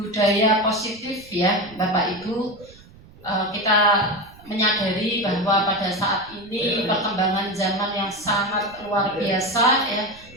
positif ya Bapak Ibu, kita menyadari bahwa pada saat ini perkembangan zaman yang sangat luar biasa ya,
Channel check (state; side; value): noise; right; rumble, 23 dB below the sound